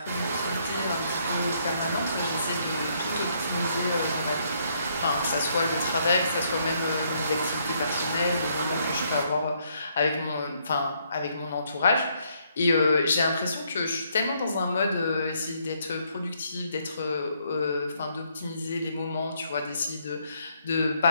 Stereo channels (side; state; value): both; inverted; correlation -0.71